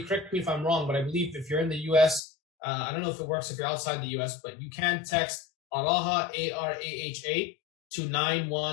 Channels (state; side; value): drops out; right; at 2.2 s